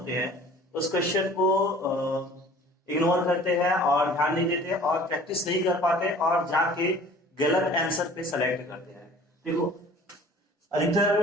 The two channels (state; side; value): normal; both; correlation 0.48